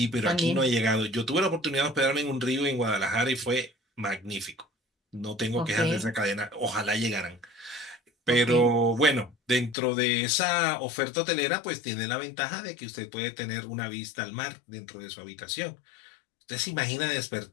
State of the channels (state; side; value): drops out; right; at 9.8 s